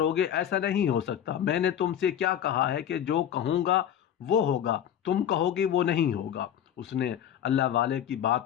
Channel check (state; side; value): quieter; right; 9.9 dB